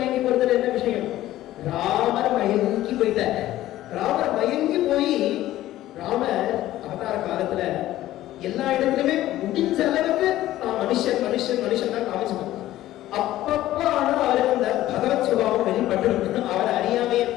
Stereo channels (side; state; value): right; quieter; 14.6 dB